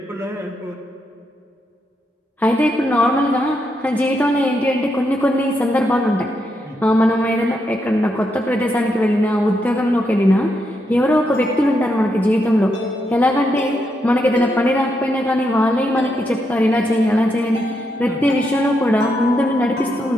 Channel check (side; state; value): both; normal; correlation 0.81